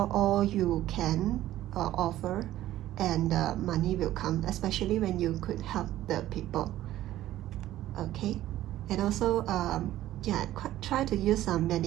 all you can offer, and money will come, especially when you could help the people. Okay. And also try to use some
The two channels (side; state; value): left; quieter; 14.0 dB